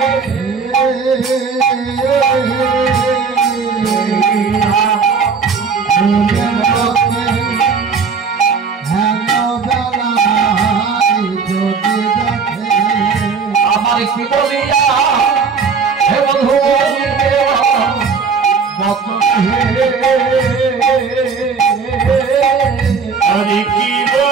কি বলিয়া হে বন্ধু আমি কি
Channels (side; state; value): left; quieter; 5.4 dB